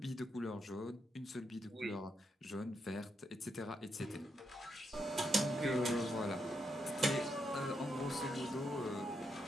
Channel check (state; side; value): normal; both; correlation 0.81